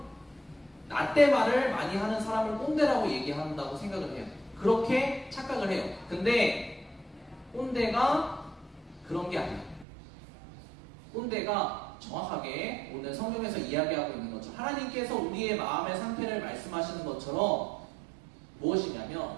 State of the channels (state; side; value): drops out; left; at 9.9 s